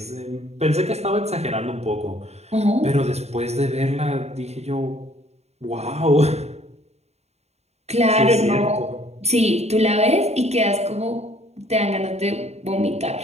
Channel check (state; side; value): late; left; 0.31 ms